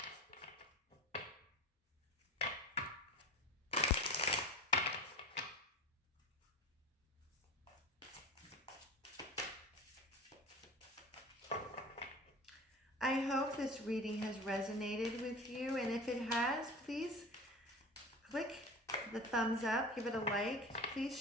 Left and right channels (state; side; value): normal; both; correlation 0.33